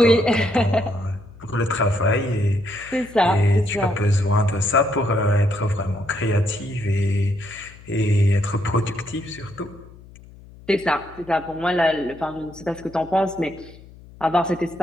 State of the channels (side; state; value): left; noise; hum, 21 dB below the sound